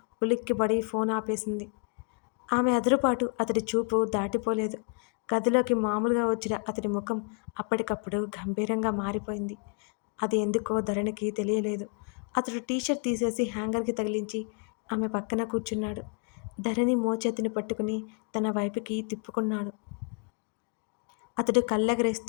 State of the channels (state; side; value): quieter; right; 38.2 dB